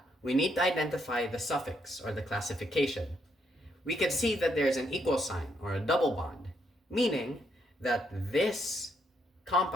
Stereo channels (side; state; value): both; normal; correlation 0.75